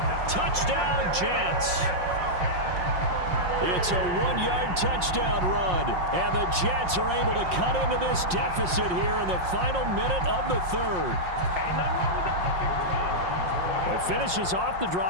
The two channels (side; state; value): left; late; 5.6 ms